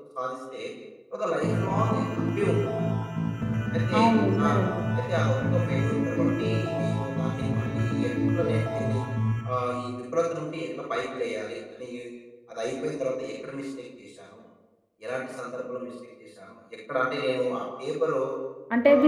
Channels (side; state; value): both; identical; correlation 1.00